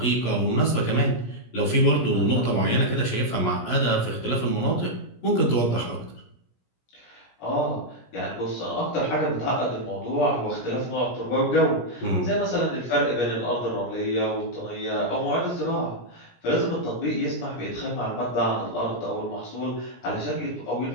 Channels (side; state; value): right; late; 17 ms